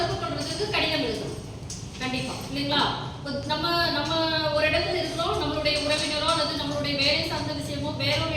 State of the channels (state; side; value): identical; both; correlation 1.00